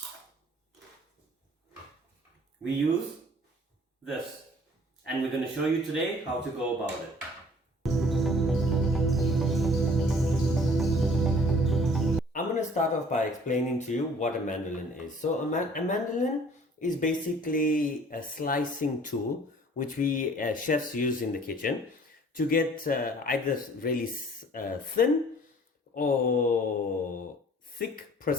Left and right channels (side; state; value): both; normal; correlation 0.52